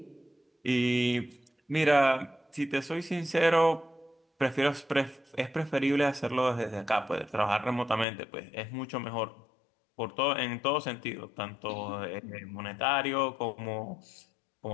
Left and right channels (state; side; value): drops out; right; at 8.1 s